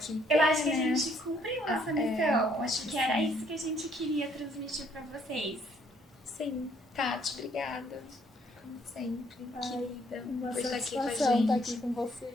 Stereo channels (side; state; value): both; normal; correlation 0.66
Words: Eu acho que a gente cumpriu essa missão. Acho que era isso que a gente queria transmitir pra vocês. Sim. Tati, obrigada. Como sempre, querida. Uma Por estar aqui com a satisfação gente. estar aqui com vocês.